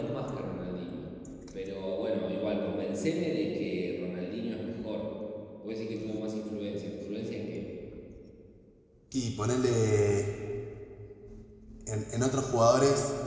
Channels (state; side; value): identical; both; correlation 1.00